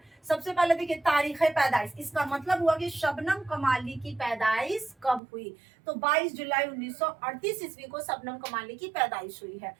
सबसे पहले देखिए तारीख पैदाइश, इसका मतलब हुआ कि शबनम कमाली की पैदाइश कब हुई। तो 22 जुलाई 1938 ईस्वी को शबनम कमाली की पैदाइश हुई है।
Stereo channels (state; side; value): drops out; left; at 5.2 s